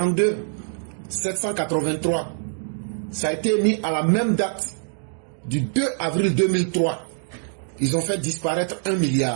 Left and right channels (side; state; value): left; silent; 62 dB below the other